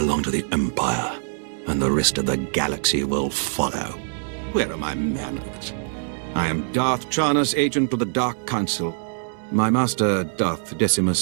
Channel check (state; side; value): silent; left; 63 dB below the other